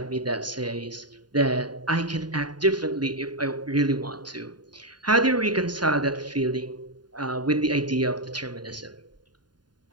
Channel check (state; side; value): late; left; 0.70 ms